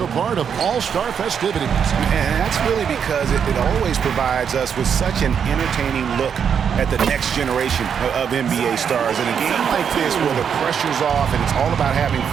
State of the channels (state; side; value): quieter; left; 7.5 dB